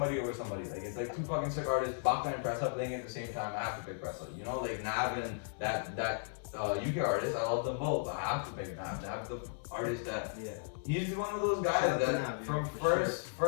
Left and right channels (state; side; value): silent; right; 54 dB below the other